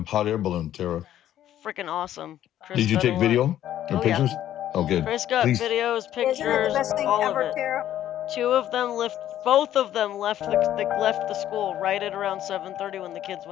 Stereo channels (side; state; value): right; quieter; 11.9 dB